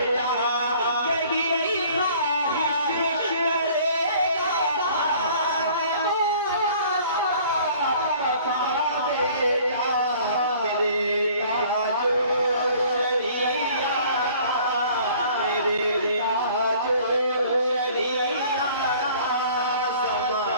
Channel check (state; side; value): inverted; both; correlation -0.52